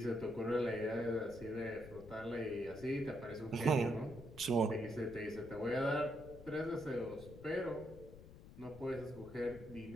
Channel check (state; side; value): noise; left; rumble, 16 dB below the sound